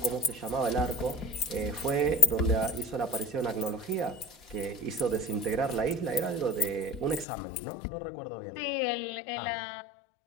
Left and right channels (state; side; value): drops out; right; at 7.2 s